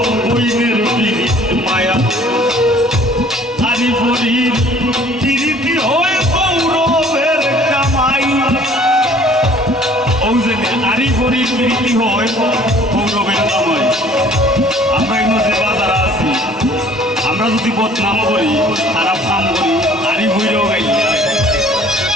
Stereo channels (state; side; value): normal; both; correlation 0.53